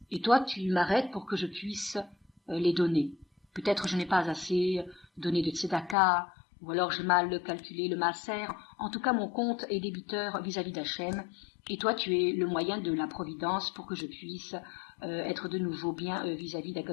Et toi, tu m'arrêtes pour que je puisse les donner. Peut-être je n'ai pas assez donné de tzedaka, ou alors j'ai mal calculé le maaser. En tout cas, mon compte est débiteur vis-à-vis d'Hachem. Et toi, tu es le moyen de la providence pour que je puisse être de nouveau bien vis-à-vis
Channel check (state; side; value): drops out; right; at 6.0 s